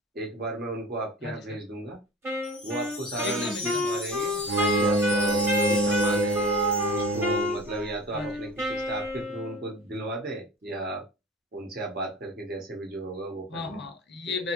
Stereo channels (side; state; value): both; normal; correlation 0.37